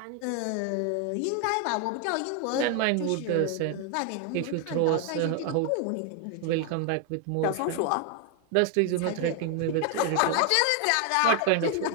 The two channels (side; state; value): both; different; correlation 0.01